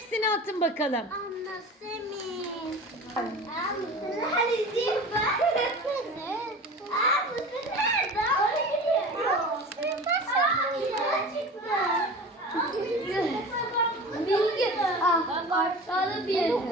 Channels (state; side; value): normal; both; correlation 0.36